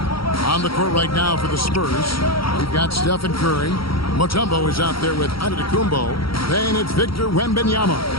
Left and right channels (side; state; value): right; late; 0.75 ms